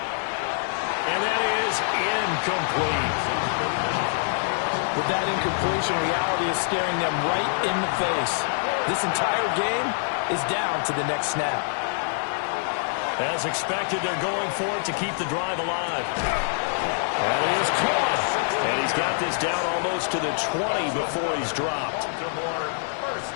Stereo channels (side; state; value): right; silent; digital silence